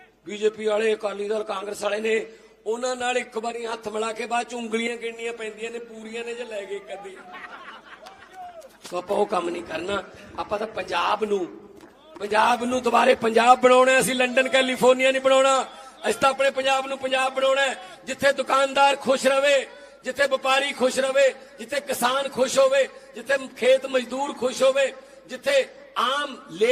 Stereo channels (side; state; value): both; identical; correlation 1.00